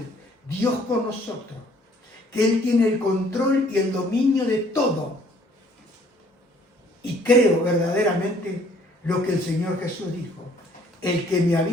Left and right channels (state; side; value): normal; both; correlation 0.60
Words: Dios con nosotros, que Él tiene el control y el dominio de todo. Y creo verdaderamente lo que el Señor Jesús dijo: el que me ha